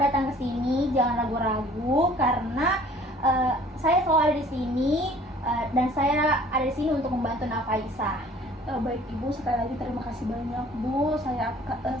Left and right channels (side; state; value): both; normal; correlation 0.52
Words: ke sini, jangan ragu-ragu karena saya selalu ada di sini dan saya ada di sini untuk membantu Nafaisa. Baik, Ibu, sekali lagi terima kasih banyak, Bu. Saya